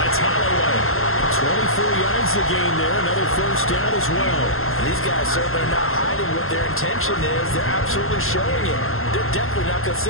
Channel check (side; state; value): right; late; 0.61 ms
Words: Holloway. 24 yards the game there. Another 1st down as well. And these guys certainly are not hiding what their intention is. They're absolutely showing it. They're definitely not going to